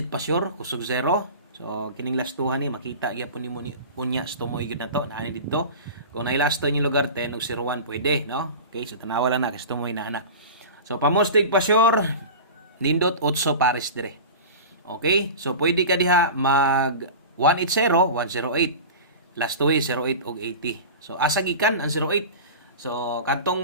pasyor kusog 0 so kining lastuhan ni makita gyapon nimo ni unya stumoy gyud nato naani didto kung nailasto ni lugar 10 ug 01 pwede no okay so tanawa lang na kay stumoy na ana so pamostig pasyor nindot 8 pares dire. Okay? So, pwede ka diha mag 180, 108. Last 2 08 og 80. So, asa gikan ang 08. So, katong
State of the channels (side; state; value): both; inverted; correlation -0.32